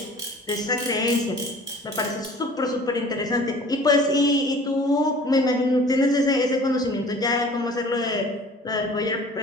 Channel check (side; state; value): both; normal; correlation 0.47